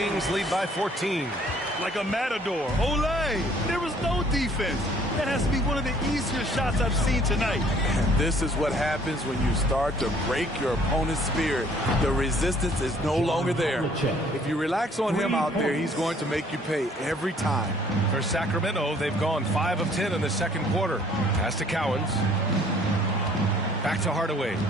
lead by 14. Like a matador. Olé! There was no defense. That has to be one of the easier shots I've seen tonight. And this is what happens when you start to break your opponent's spirit. The resistance is no longer there. If you relax on him out there, he's going to make you pay every time. For Sacramento, they've gone 5 of 10 in the second quarter. Pass to Cowens. Back to Hardaway.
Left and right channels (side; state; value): both; normal; correlation 0.59